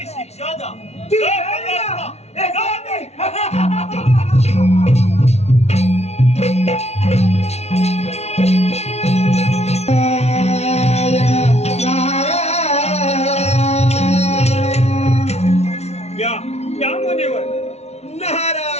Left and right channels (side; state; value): right; late; 0.31 ms